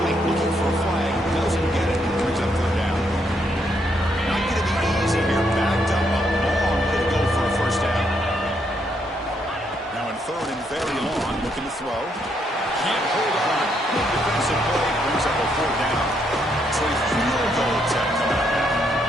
Looking for a flag. Doesn't get it. Brings up 3rd down. Not going to be easy here. Backed up a long way to go for a 1st down. Now in 3rd and very long. looking to throw. Can't hold on. Good defensive play. Brings up a 4th down. So a field goal attempt coming up now.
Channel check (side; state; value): both; normal; correlation 0.75